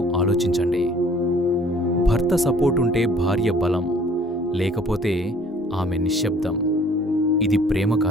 ఆలోచించండి. భర్త సపోర్ట్ ఉంటే భార్య బలం, లేకపోతే ఆమె నిశ్శబ్దం. ఇది ప్రేమ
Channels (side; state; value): both; normal; correlation 0.55